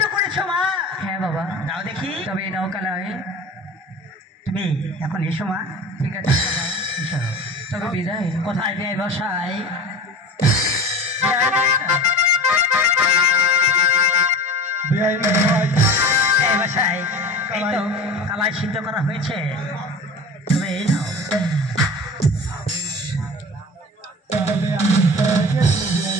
করেছো মা? হ্যাঁ বাবা। নাও দেখি। তবে নাও কালাই তুমি এখন এসো মা। ঠিক আছে এসো। তবে বিদায়। কোথায় বিয়ে বসাই? বসাই এই তো কালাই সিদ্ধ করা হয়েছে, তুমি এই নাও।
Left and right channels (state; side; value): normal; both; correlation 0.35